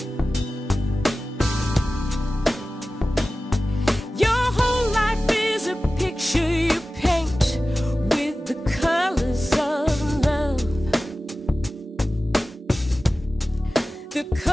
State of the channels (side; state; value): both; normal; correlation 0.96